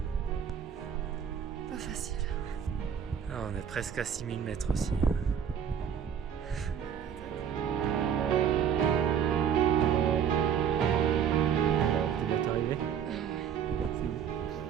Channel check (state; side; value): quieter; left; 8.3 dB